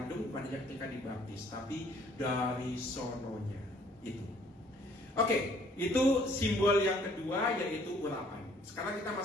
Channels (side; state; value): both; normal; correlation 0.60